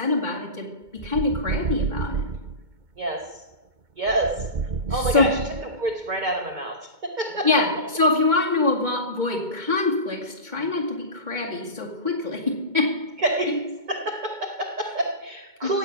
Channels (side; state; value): left; late; 2.2 ms